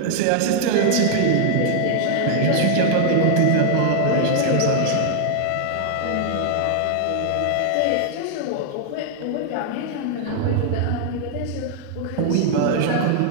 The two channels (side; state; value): both; different; correlation -0.01